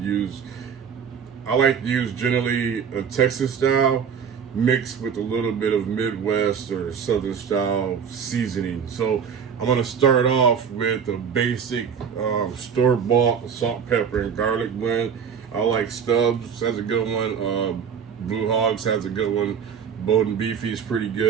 use. I like to use generally a Texas style mixed with a little bit of Midwest or Southern style seasoning. So I'm gonna start off with a basic store-bought salt, pepper, and garlic blend. I like Stubbs, has a good one. Blue Hogs has a good one. Bowden Beefy is pretty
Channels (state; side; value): quieter; left; 7.1 dB